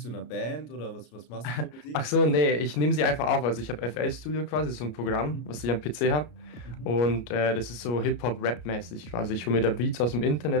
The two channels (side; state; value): right; late; 33 ms